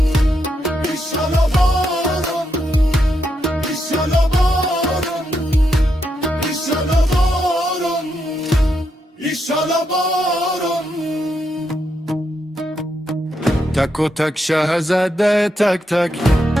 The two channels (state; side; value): normal; both; correlation 0.81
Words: ایشالا بارون، ایشالا بارون، ایشالا بارون، ایشالا بارون. تک و تک شه زده تک تک،